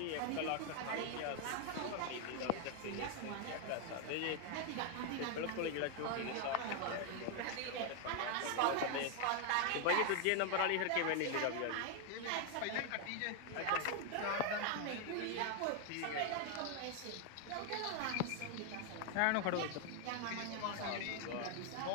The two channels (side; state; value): both; different; correlation 0.00